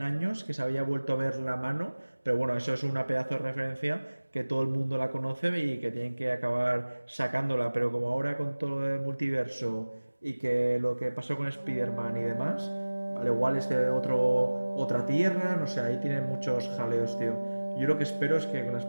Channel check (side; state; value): both; inverted; correlation -1.00